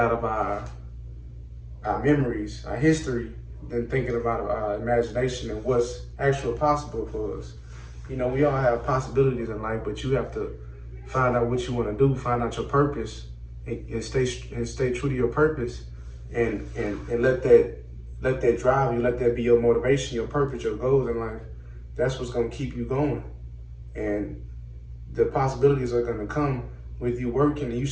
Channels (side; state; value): both; identical; correlation 1.00